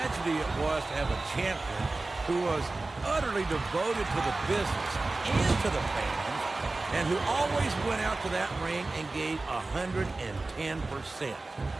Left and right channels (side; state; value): left; quieter; 3.3 dB